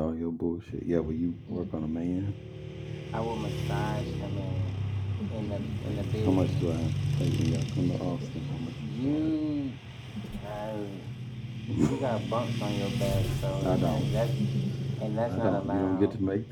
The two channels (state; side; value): identical; both; correlation 1.00